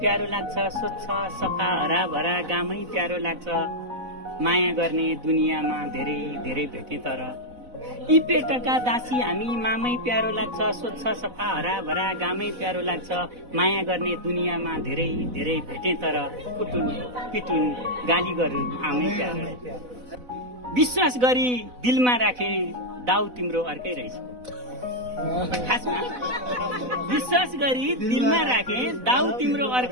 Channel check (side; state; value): left; late; 4.0 ms